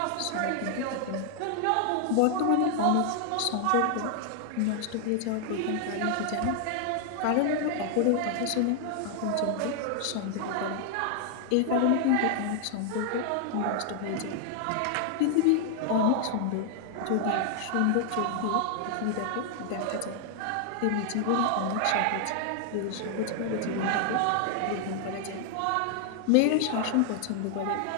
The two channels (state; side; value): different; both; correlation 0.00